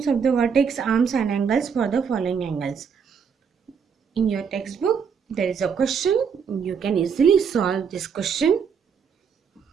of the vertex, arms and angles for the following angles. In your textbook, there is a question. You can easily solve this question.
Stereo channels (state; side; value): quieter; left; 6.6 dB